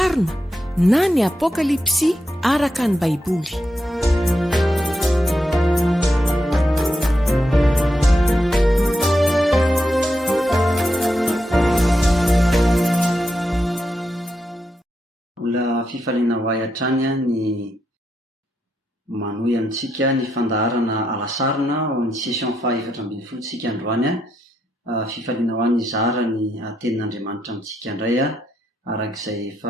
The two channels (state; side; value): normal; both; correlation 0.83